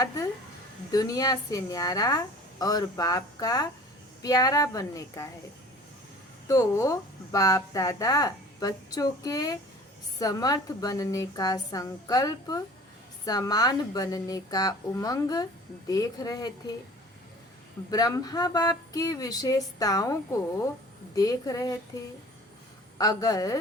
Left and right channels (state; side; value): normal; both; correlation 0.45